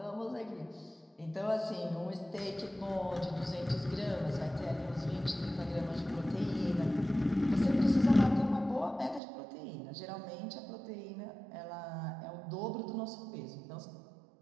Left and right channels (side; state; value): left; drops out; at 9.2 s